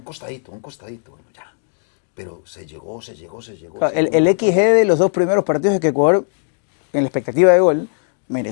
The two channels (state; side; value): silent; right; digital silence